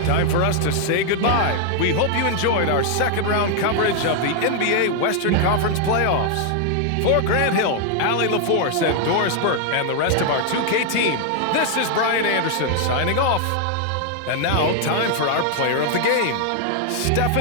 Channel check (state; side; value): different; both; correlation 0.00